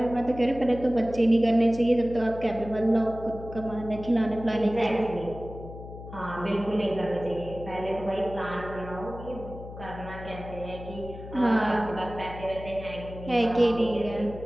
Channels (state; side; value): noise; left; hum, 13 dB below the sound